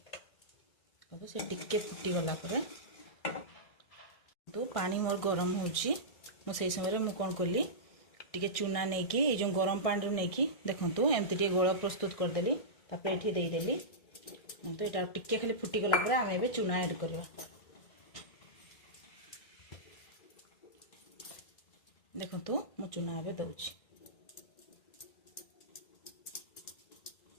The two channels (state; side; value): late; right; 1.6 ms